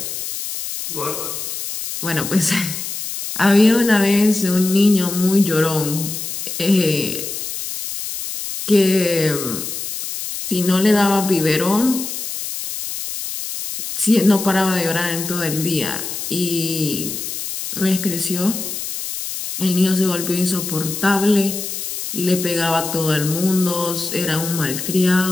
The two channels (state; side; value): noise; left; hiss, 6 dB below the sound